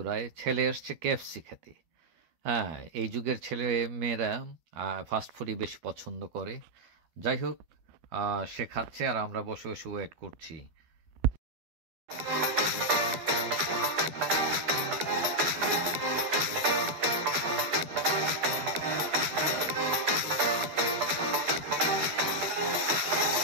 ছেলে এসছে KFC খেতে। হ্যাঁ, এই যুগের ছেলে মেয়েরা ফাস্টফুডই বেশি পছন্দ করে। যাই হোক, সে খাচ্ছে আর আমরা বসে বসে ওয়েট করছি।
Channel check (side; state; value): left; late; 12 ms